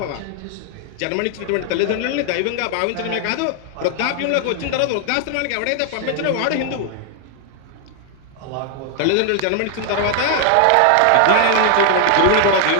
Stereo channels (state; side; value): different; both; correlation 0.00